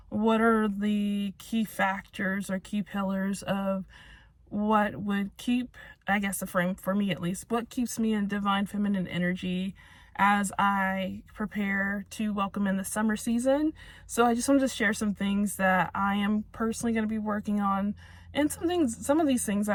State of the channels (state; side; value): identical; both; correlation 1.00